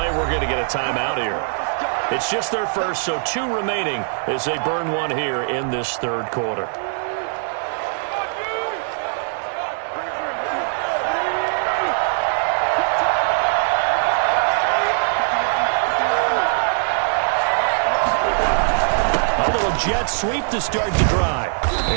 we're going to get a timeout here. It's just their first, so 2 remaining as they burn one here in this third quarter. Jet sweep to start the drive.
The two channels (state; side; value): silent; left; digital silence